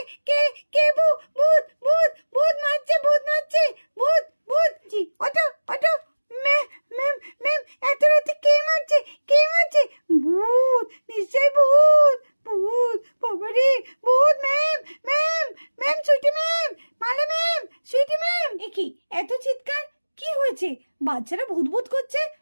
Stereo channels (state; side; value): inverted; both; correlation -1.00